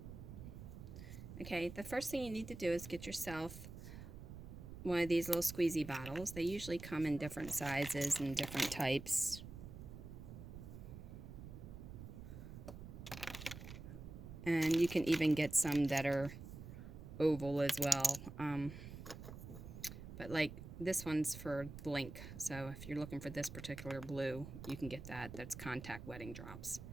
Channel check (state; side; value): noise; right; rumble, 11 dB below the sound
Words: Okay, the first thing you need to do is get yourself one of these little squeezy bottles. They usually come in different sizes and different types. And you can even get some that are oval as well. But like this one's for Blink, so if you're looking for this particular blue, you can get that. That's contact wedding drops.